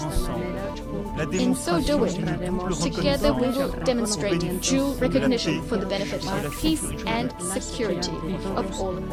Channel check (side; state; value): both; identical; correlation 1.00